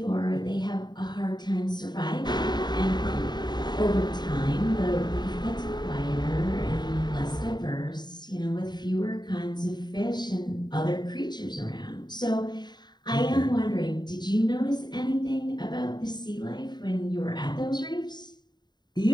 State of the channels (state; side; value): late; right; 0.21 ms